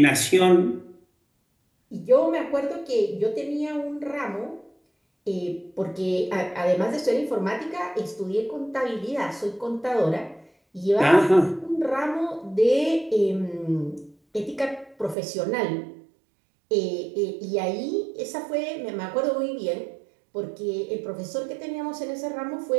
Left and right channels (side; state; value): left; drops out; at 15.2 s